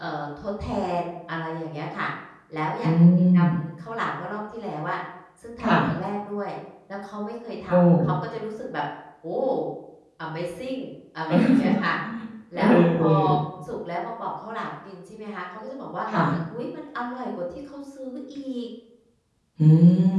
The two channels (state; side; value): identical; both; correlation 1.00